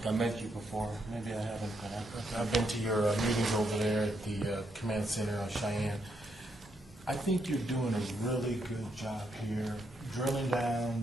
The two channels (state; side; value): normal; both; correlation 0.78